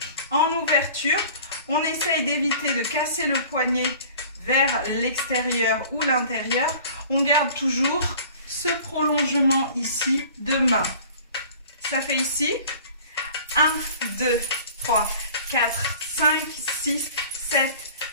En ouverture, on essaye d'éviter de casser le poignet vers l'extérieur ou l'intérieur, on garde toujours ce prolongement ici de main. Ça fait ici 1, 2, 3, 4, 5, 6, 7,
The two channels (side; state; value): both; inverted; correlation -0.46